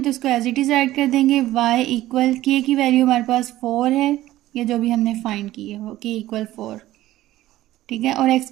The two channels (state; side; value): quieter; left; 15.3 dB